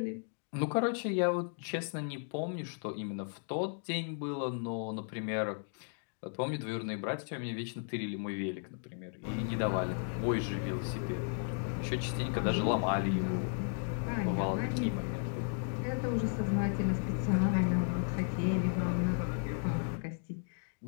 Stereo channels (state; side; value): silent; right; 55 dB below the other